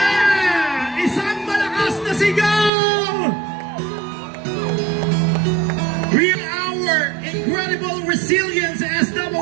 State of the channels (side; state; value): left; drops out; at 2.7 s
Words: Isang malakas na sigaw! Real our incredible resilience as